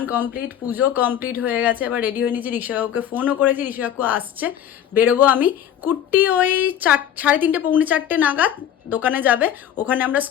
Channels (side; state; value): right; quieter; 10.1 dB